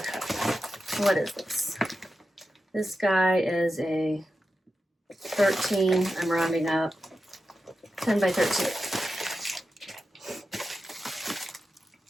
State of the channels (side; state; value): both; normal; correlation 0.90